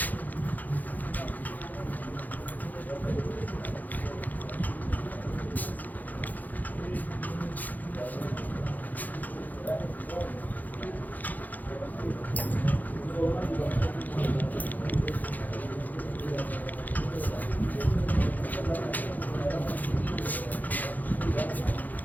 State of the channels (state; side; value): late; right; 0.082 ms